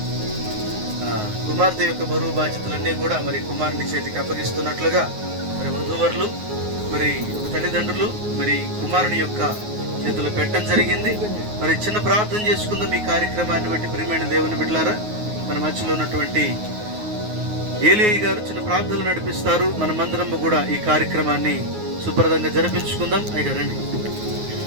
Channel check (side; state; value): left; late; 9.5 ms